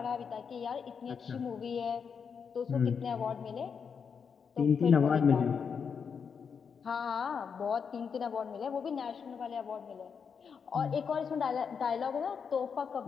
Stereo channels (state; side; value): quieter; right; 6.4 dB